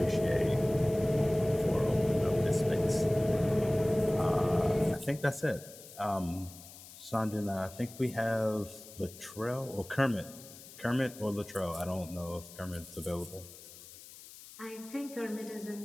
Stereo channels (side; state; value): left; noise; hiss, 17 dB below the sound